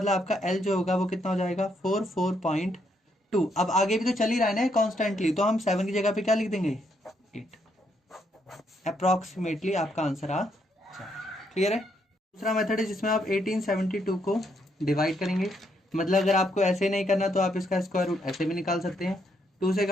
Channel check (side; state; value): both; normal; correlation 0.75